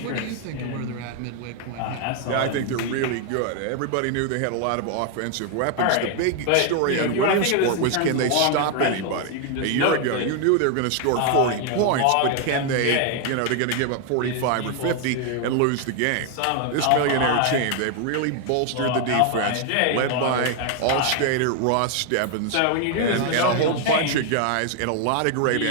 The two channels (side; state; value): both; different; correlation 0.00